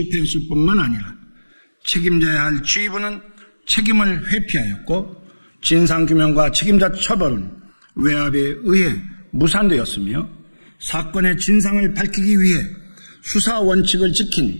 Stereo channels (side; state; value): both; inverted; correlation -1.00